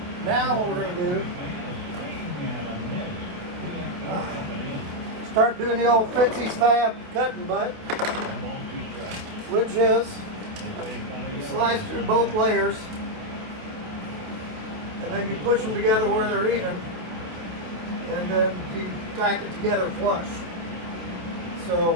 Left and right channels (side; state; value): left; late; 27 ms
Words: Now what we're going to do, start doing the old Fitzy's Fab cutting butt, which is you slice through both layers and then you push them together where they're even, and then you tack it together flush. So